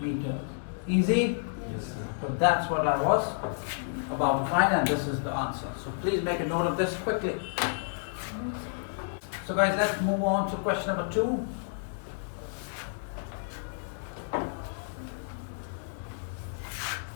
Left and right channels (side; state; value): right; silent; 58 dB below the other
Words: Easy? Yes, sir. So that's what I was about to find, and this is the answer. So please make a note of this quickly. So guys, let's move on to question number 2.